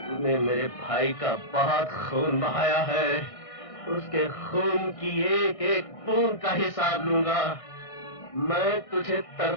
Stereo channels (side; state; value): right; late; 1.6 ms